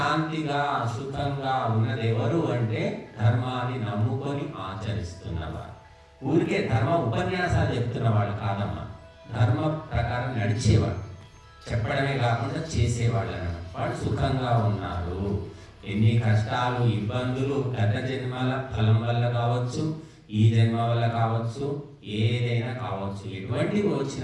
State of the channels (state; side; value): identical; both; correlation 1.00